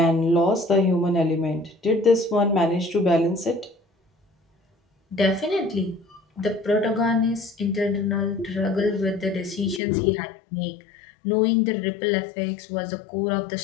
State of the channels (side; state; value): right; drops out; at 9.8 s